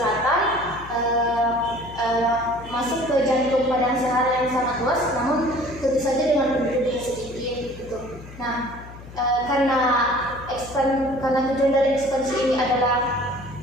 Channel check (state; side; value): noise; left; hum, 16 dB below the sound